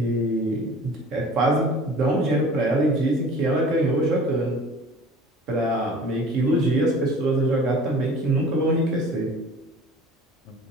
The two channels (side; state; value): both; normal; correlation 0.44